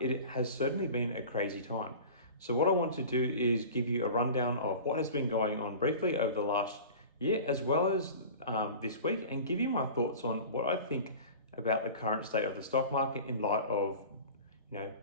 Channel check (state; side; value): inverted; both; correlation -0.37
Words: has certainly been a crazy time. So what I want to do is give you a rundown of what has been going on briefly over the last year, as well as this week, and give you my thoughts on what I think about the current state of the stock market in light of